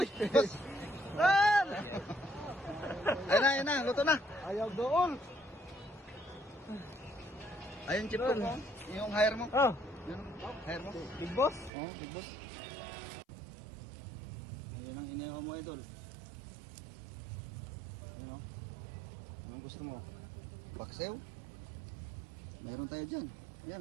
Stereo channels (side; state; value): left; drops out; at 11.7 s